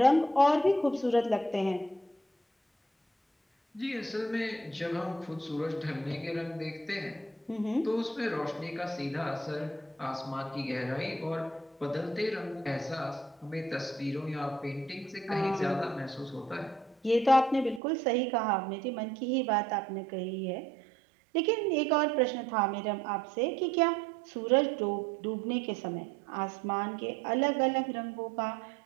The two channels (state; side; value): drops out; left; at 17.8 s